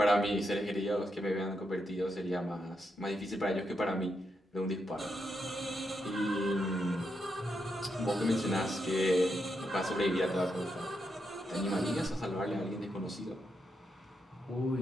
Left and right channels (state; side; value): normal; both; correlation 0.83